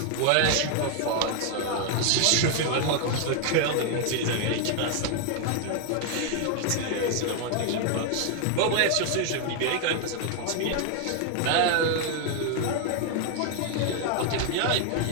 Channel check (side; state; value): both; different; correlation 0.00